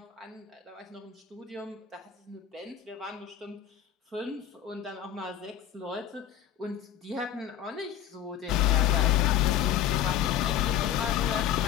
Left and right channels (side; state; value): right; quieter; 10.3 dB